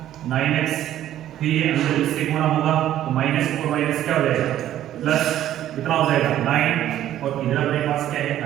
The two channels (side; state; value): left; quieter; 12.2 dB